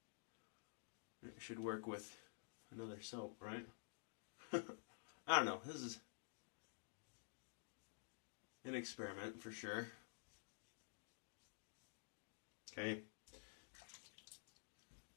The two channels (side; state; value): right; silent; digital silence